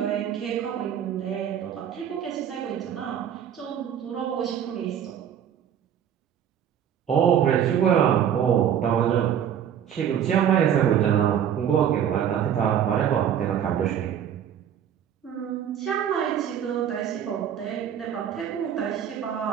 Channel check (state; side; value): quieter; left; 9.2 dB